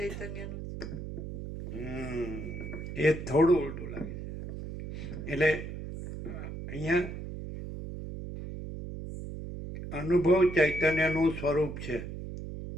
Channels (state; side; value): noise; right; hum, 8 dB below the sound